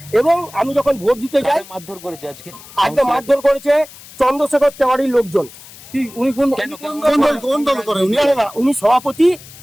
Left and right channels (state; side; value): noise; left; hiss, 19 dB below the sound